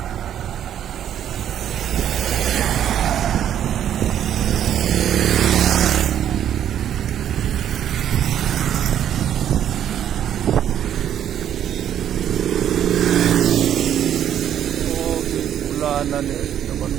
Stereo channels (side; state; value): left; quieter; 10.2 dB